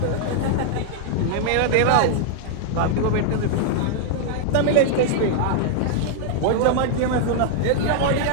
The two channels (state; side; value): different; both; correlation -0.01